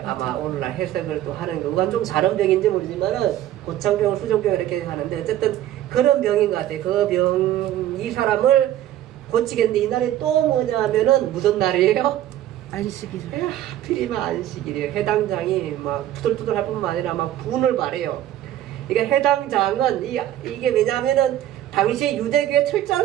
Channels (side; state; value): left; quieter; 12.7 dB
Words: 아마 오늘날 해석을 또 하는 거. 그건 좀 다른 병인지 모르지만은 고창병, 수종병 이렇게 하는데 어쨌든 그런 병인 것 같아요. 그 병, 이 사람을 고치겠는데 이날이 또 뭐냐 하면은 무슨 날이에요? 안식일. 하필이면 안식일이에요. 해당장이 막 투덜투덜 할 뿐만 아니라 막 분을 발해요. 그러니까 해당장은 이게 왜냐하면은 당시에 유대교에